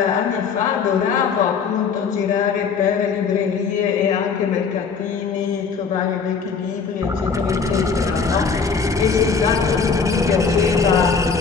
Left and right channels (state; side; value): quieter; right; 5.6 dB